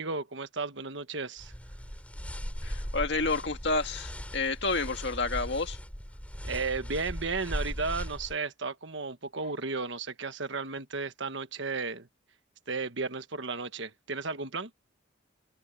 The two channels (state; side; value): normal; both; correlation -0.05